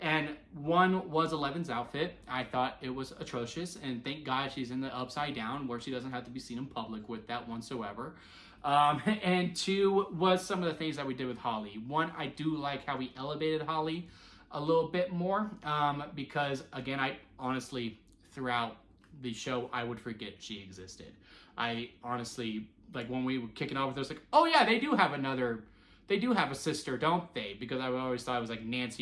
And one was Eleven's outfit. I thought it was atrocious, and thank God she's in the upside down where she doesn't have to be seen in public with that whatsoever. And 2 was some of the things that we did with Holly. 1, I do like how we elevated Holly a little bit more, because again, I honestly, throughout the show, I would forget she existed. I honestly, like, when we were kicking off with her, I was like, oh yeah, they do have a sister, don't they? Because I always thought it was like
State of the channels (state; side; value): identical; both; correlation 1.00